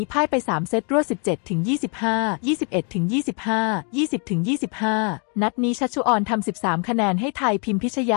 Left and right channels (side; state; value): right; quieter; 37.1 dB